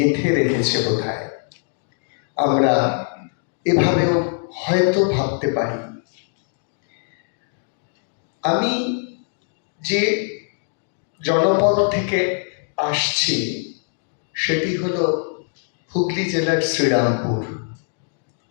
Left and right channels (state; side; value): silent; right; 60 dB below the other